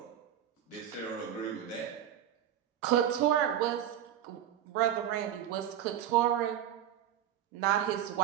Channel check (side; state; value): left; quieter; 10.8 dB